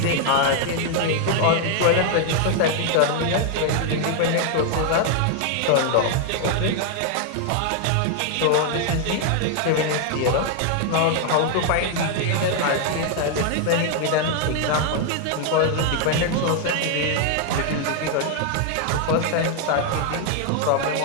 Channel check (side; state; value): both; different; correlation 0.00